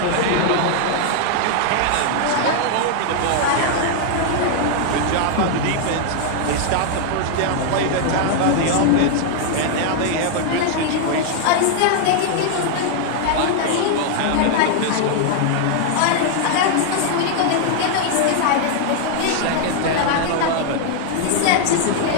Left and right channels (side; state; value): both; different; correlation 0.00